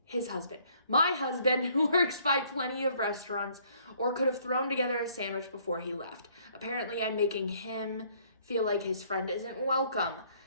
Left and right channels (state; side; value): inverted; both; correlation -0.63